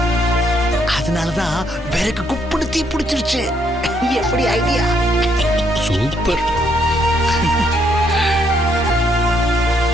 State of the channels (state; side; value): normal; both; correlation 0.72